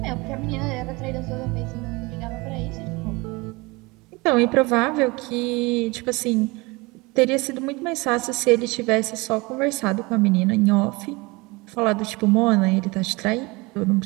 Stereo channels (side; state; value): left; quieter; 24.6 dB